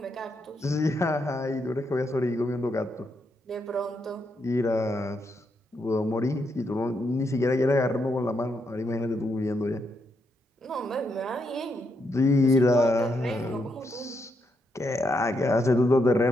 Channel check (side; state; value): both; normal; correlation 0.80